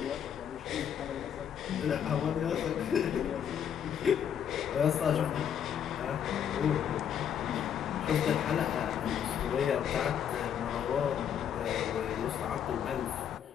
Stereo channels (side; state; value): right; quieter; 8.8 dB